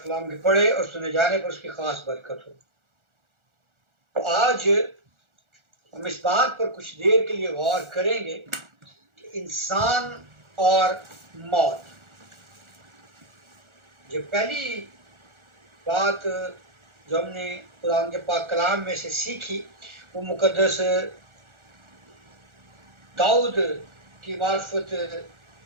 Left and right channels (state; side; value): late; left; 1.4 ms